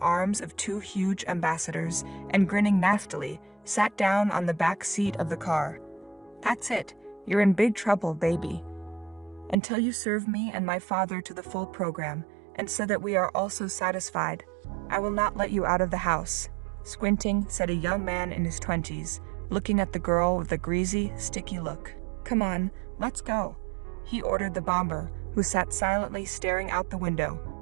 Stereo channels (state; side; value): drops out; left; at 9.6 s